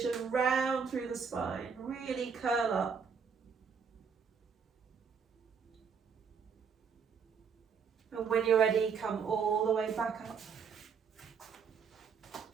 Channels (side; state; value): left; quieter; 6.3 dB